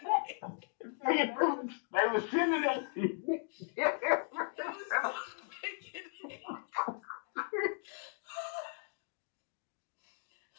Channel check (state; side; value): silent; right; 53 dB below the other